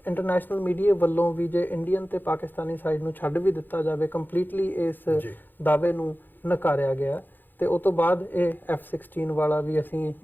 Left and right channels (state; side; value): late; right; 0.090 ms